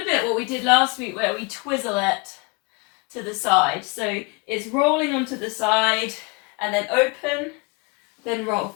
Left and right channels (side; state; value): right; quieter; 29.8 dB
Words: bit what we did last week, where we twizzle it to the side. So it's rolling onto the side and then open, then roll